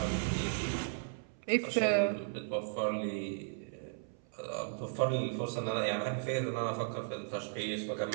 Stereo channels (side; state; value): left; silent; 54 dB below the other